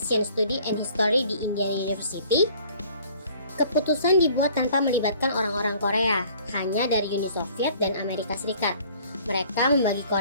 Study and History di Indiana University, keputusan dibuat tanpa melibatkan orang-orang Korea, hanya dari Uni Soviet dan Amerika Serikat. Mereka membagi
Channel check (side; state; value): both; inverted; correlation -0.54